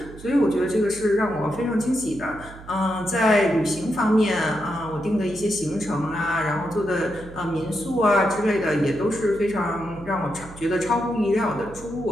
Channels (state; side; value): noise; right; hum, 17 dB below the sound